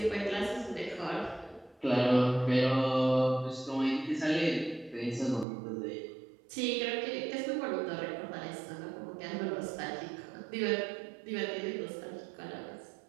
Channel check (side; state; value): left; drops out; at 5.5 s